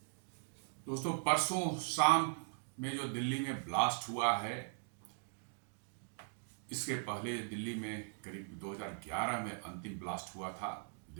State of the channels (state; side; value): silent; left; digital silence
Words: दोस्तों, परसों शाम में जो दिल्ली में ब्लास्ट हुआ है, इसके पहले दिल्ली में करीब 2011 में अंतिम ब्लास्ट हुआ था